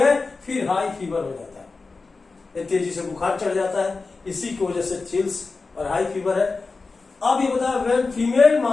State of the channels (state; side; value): quieter; right; 4.0 dB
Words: फिर हाई फीवर हो जाता है, तेजी से बुखार चढ़ जाता है, इसी की वजह से चिल्स और हाई फीवर है। अब ये बताया व्हेन फीमेल